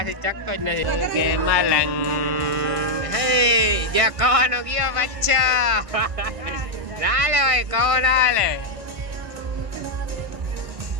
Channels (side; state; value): left; late; 1.5 ms